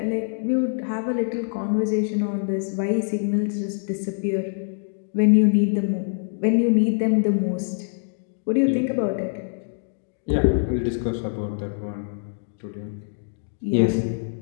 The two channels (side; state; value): right; silent; digital silence